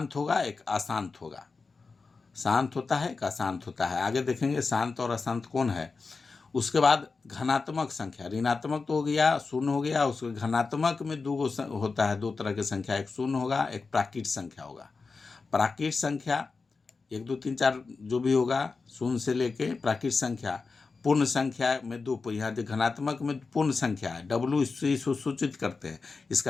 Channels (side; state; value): right; quieter; 4.4 dB